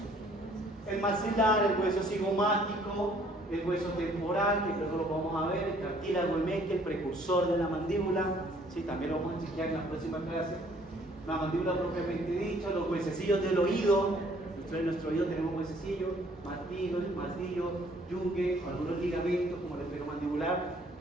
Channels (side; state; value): both; normal; correlation 0.60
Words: El maxilar, el hueso cigomático, el hueso temporal, que luego lo vamos a ver, el cartílago emeque, el precursor de la mandíbula, sí, también lo vamos a enseñar en la próxima clase. La mandíbula propiamente dicha, los huesecillos del oído, en nuestro oído tenemos huesecillos, martillo, yunque, algunos ligamentos como el esferomandibular,